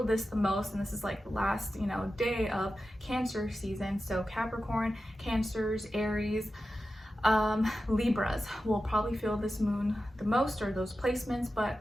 this the most, and this is like the last day of Cancer season. So Capricorn, Cancers, Aries, Libras will probably feel this moon the most, or those placements, but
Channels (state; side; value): normal; both; correlation 0.92